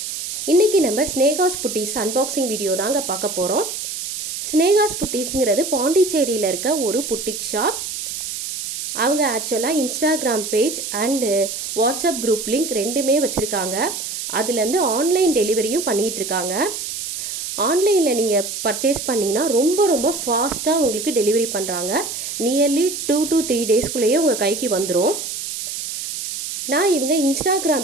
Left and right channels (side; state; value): right; noise; hiss, 6 dB below the sound